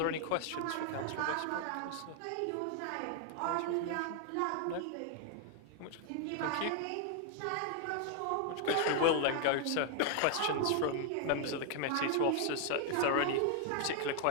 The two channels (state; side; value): different; both; correlation 0.00